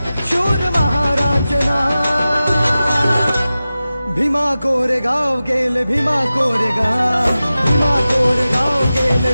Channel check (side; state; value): both; inverted; correlation -0.95